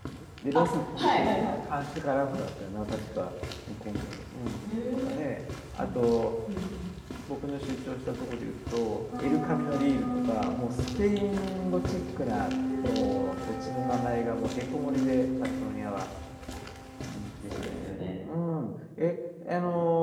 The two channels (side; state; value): both; identical; correlation 1.00